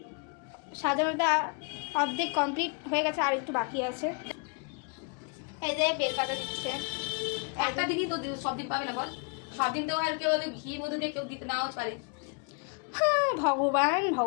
সাজানোটা অর্ধেক কমপ্লিট হয়ে গেছে, আর একটু বাকি আছে। এই যে বেকাটা দিচ্ছে। একটা দিনই তো সব দিন পাবে না বল, সব দিন তো আর কেউ ঘি মধু দিয়ে কেউ দিতে নাও পারে। হ্যাঁ ভগবান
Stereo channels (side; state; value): right; quieter; 35.6 dB